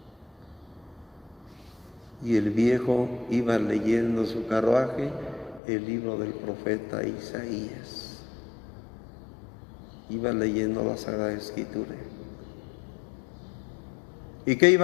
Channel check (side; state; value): right; drops out; at 5.6 s